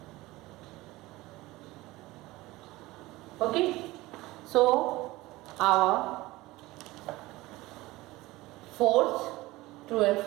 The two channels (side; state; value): left; quieter; 19.4 dB